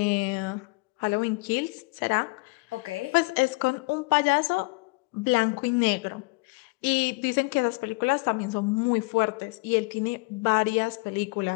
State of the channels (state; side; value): quieter; right; 27.3 dB